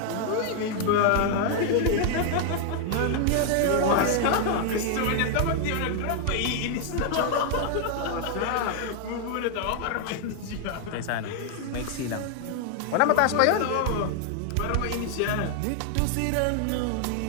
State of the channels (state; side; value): different; both; correlation 0.00